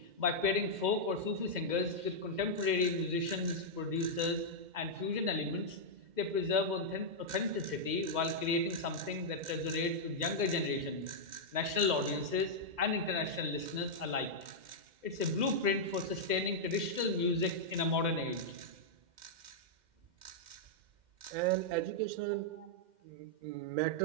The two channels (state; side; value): late; left; 2.1 ms